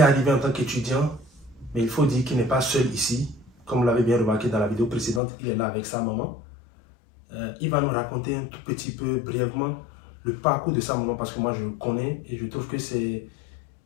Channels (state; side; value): drops out; right; at 5.2 s